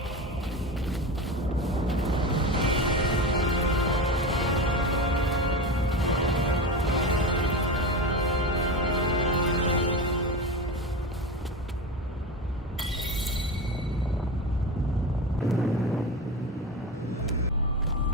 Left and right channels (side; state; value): both; normal; correlation 0.24